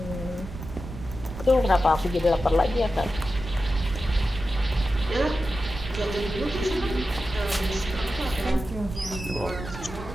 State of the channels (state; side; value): noise; right; rumble, 11 dB below the sound